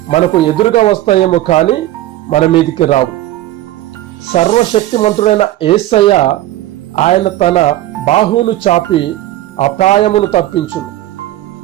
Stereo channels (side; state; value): left; quieter; 14.9 dB